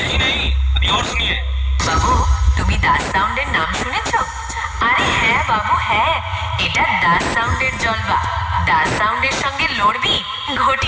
नहीं, अभी और सुनिए। বাবু, তুমি দাস সাউন্ডের নাম শুনেছো? আরে হ্যাঁ বাবু হ্যাঁ, এটা দাস সাউন্ডের জলবা। দাস সাউন্ডের সঙ্গে লড়বি, ঘটি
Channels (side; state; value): both; identical; correlation 1.00